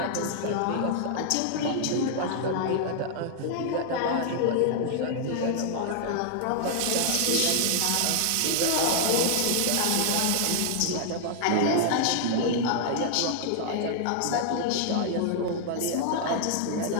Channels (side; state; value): both; different; correlation -0.01